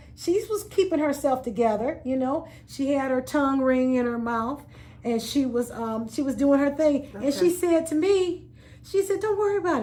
keeping herself together, She had her tongue ring in her mouth, and she was doing her thing. Okay. And she said to me, don't worry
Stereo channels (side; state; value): both; identical; correlation 1.00